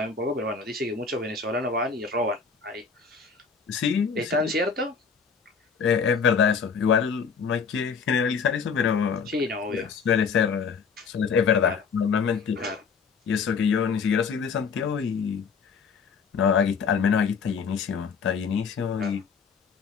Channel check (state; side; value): quieter; right; 5.7 dB